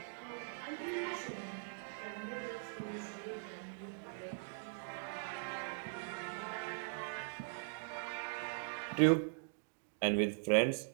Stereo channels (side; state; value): left; silent; digital silence